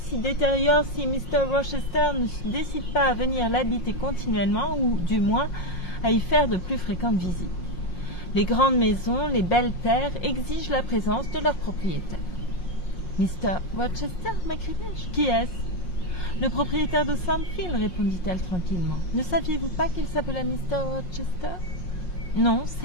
détériore si Mr. Rochester ne se décide pas à venir l'habiter continuellement, ou du moins à y faire de plus fréquentes visites. Les grandes maisons, les belles terres exigent la présence de leurs propriétaires. »« Mr. Rochester » m'écriai-je. « Qui est-ce ?»« Le propriétaire de Thornfield, » répondit-elle tranquillement. « Ne saviez-vous pas qu'il s'appelait Mr. Rochester ?»« Non,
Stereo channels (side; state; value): right; late; 5.6 ms